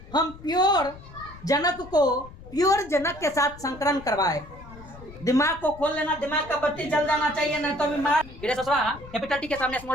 हम प्योर जनक को प्योर जनक के साथ संकरण करवाए। दिमाग को खोल लेना, दिमाग का बत्ती जल जाना चाहिए, नहीं तो बीमार। कैपिटल टी के सामने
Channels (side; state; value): left; noise; rumble, 18 dB below the sound